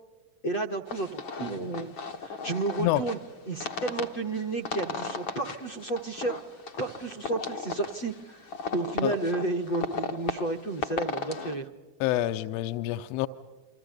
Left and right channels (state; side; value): late; right; 8.1 ms